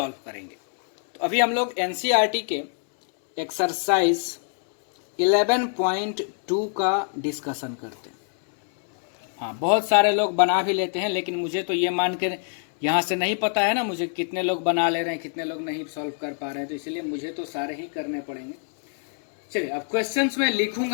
करेंगे। तो अभी हम लोग एनसीईआरटी के एक्सरसाइज 11.2 का डिस्कशन करते हैं। हाँ, बहुत सारे लोग बना भी लेते हैं, लेकिन मुझे तो ये मान के यहाँ से नहीं पता है ना मुझे कितने लोग बना ले रहे हैं, कितने लोग नहीं सॉल्व कर पा रहे हैं, तो इसलिए मुझे तो सारे ही करने पड़ेंगे। चलिए, अब क्वेश्चंस में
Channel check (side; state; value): right; silent; 58 dB below the other